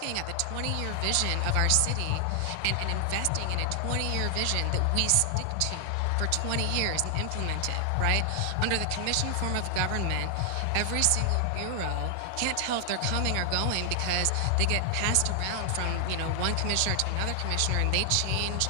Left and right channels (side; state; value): both; different; correlation 0.00